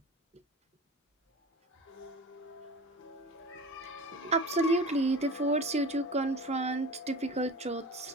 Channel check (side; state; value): both; normal; correlation 0.35